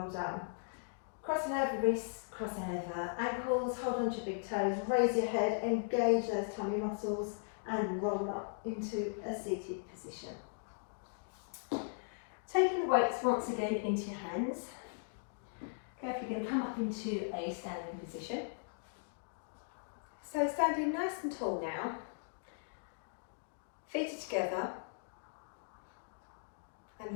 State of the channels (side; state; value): right; silent; digital silence